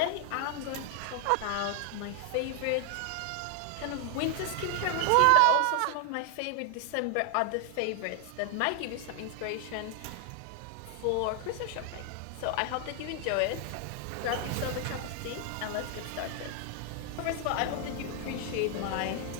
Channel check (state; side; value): different; both; correlation 0.00